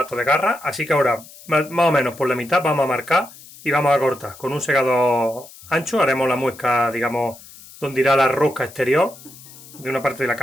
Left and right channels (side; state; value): left; noise; hiss, 20 dB below the sound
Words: de garra, así que ahora más o menos por la mitad vamos a marcar y vamos a cortar. Con un segador ancho haremos la muesca, digamos, donde irá la rosca exterior de una parte de la